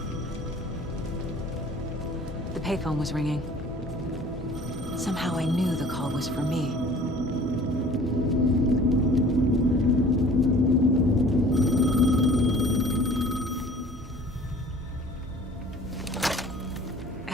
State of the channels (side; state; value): both; normal; correlation 0.49